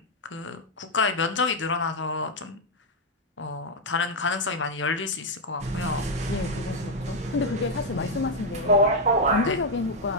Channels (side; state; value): both; normal; correlation 0.00